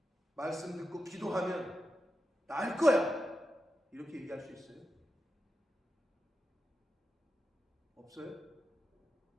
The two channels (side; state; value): both; normal; correlation 0.89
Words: 말씀 듣고 기도하면 나을 거야. 이렇게 얘기할 수 있어요? 없어요?